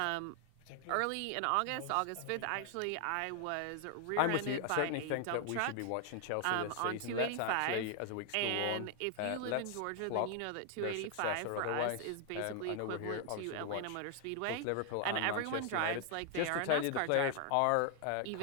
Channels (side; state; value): both; different; correlation 0.00